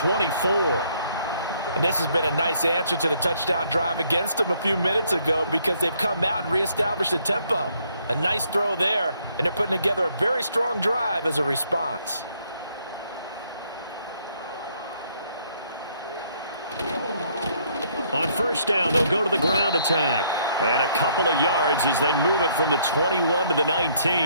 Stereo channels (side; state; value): both; inverted; correlation -0.67